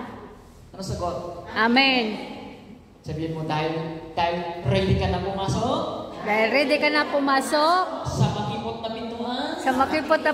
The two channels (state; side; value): identical; both; correlation 1.00